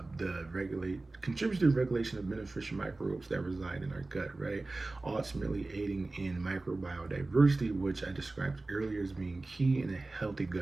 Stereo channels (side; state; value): left; quieter; 3.2 dB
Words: the regulation of beneficial microbes that reside in our gut, right? Ultimately aiding in microbial diversity, which I described earlier as being key in a healthy